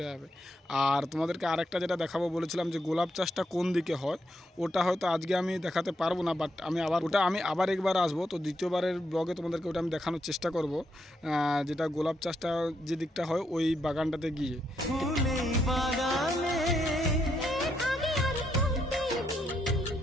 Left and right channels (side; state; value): both; normal; correlation 0.79